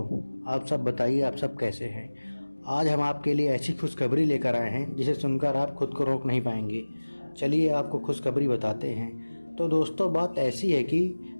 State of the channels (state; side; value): inverted; both; correlation -1.00